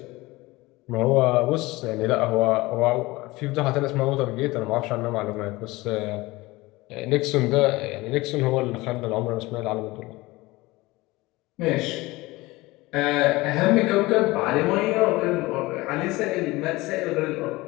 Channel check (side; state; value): right; quieter; 20.8 dB